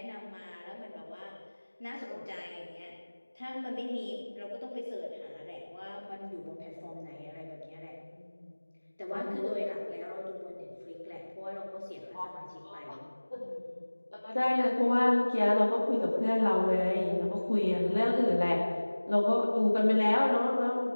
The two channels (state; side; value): inverted; both; correlation -1.00